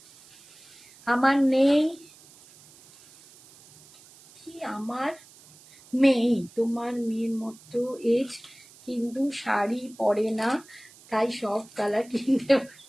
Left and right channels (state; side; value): noise; right; hiss, 24 dB below the sound